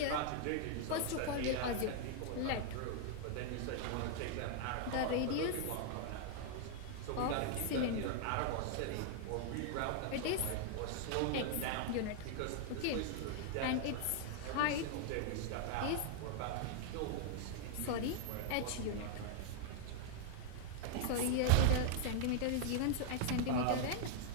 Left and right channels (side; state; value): both; different; correlation 0.00